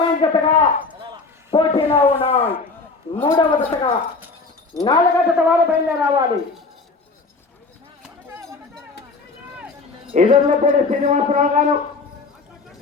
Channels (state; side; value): quieter; right; 4.0 dB